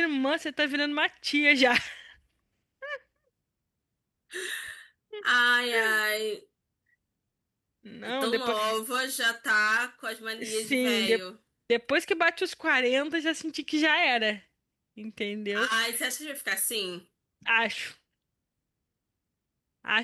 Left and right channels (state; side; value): identical; both; correlation 1.00